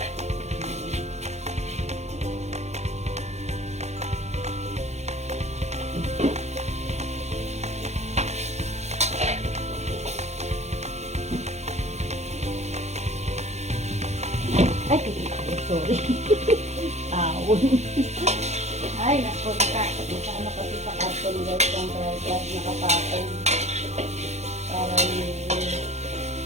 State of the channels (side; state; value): left; late; 0.32 ms